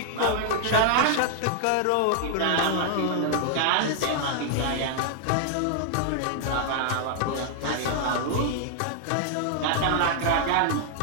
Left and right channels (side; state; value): both; different; correlation -0.01